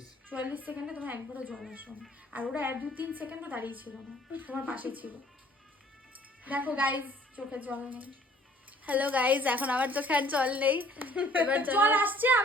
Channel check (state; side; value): normal; both; correlation 0.56